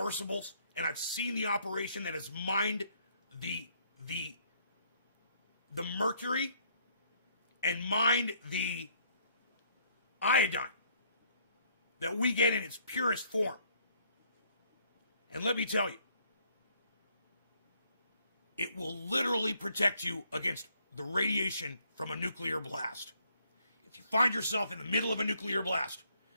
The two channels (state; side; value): inverted; both; correlation -0.67